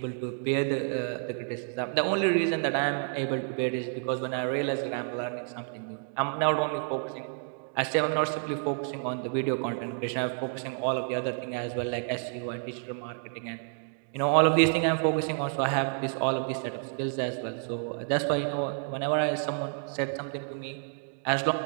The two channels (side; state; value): left; silent; 58 dB below the other